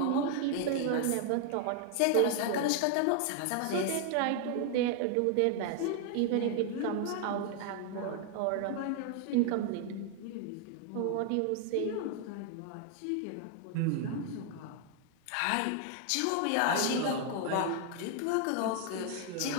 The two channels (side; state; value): both; different; correlation 0.00